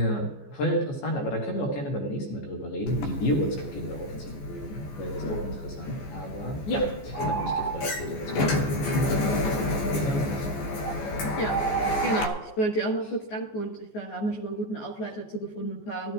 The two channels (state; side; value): late; right; 14 ms